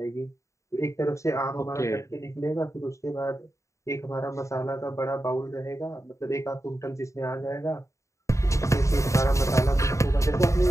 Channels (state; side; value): late; right; 0.15 ms